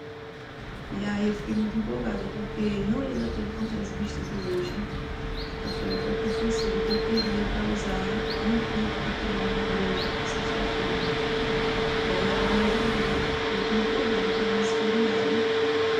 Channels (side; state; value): both; identical; correlation 1.00